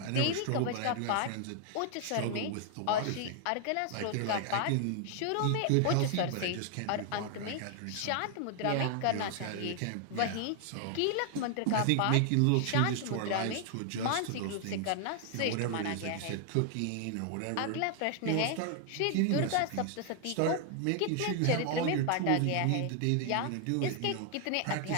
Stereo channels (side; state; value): both; different; correlation 0.00